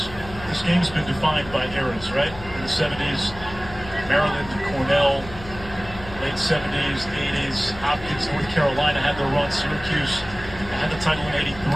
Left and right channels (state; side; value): noise; left; hum, 15 dB below the sound